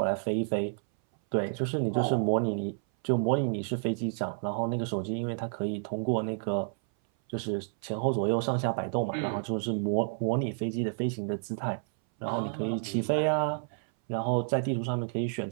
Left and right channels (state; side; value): silent; left; 58 dB below the other